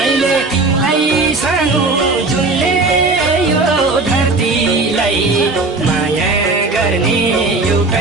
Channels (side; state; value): left; quieter; 3.5 dB